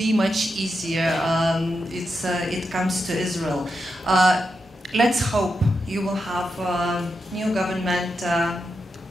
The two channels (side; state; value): both; normal; correlation 0.86